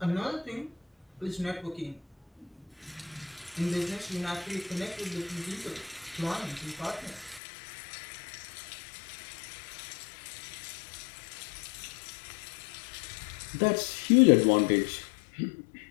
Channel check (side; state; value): right; drops out; at 7.4 s